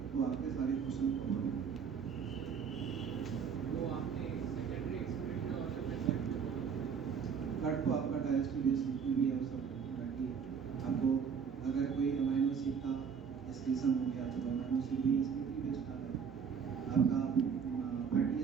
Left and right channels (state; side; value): quieter; left; 6.6 dB